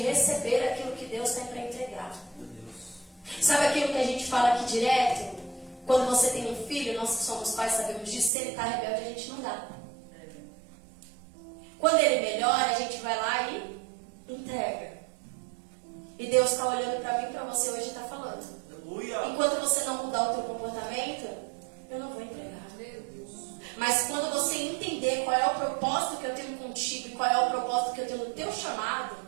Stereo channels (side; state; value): left; drops out; at 8.3 s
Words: receber aquilo que Deus tem para entregar. Sabe aquilo que a gente fala aqui direto? Quando você tem um filho, nós que somos pais sabemos disso, se ele está rebelde, a gente não dá. Quando ele melhora, a gente vai lá e entrega. E Deus está olhando para mim e para você hoje e está falando: Aleluia. enquanto você não mudar o teu comportamento, eu não vou entregar. Mas quando você entender qual é o propósito que eu tenho contigo e qual é o propósito que eu tenho no teu chamado,